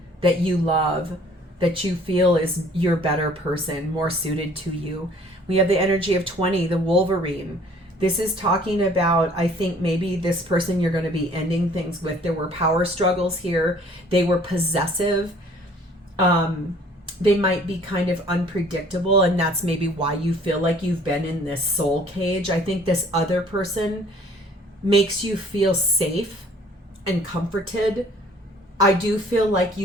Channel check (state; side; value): normal; both; correlation 0.55